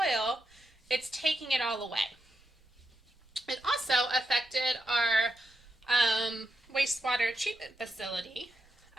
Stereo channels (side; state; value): both; normal; correlation 0.85